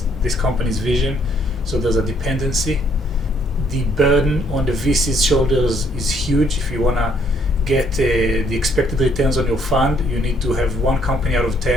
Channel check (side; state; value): both; normal; correlation 0.67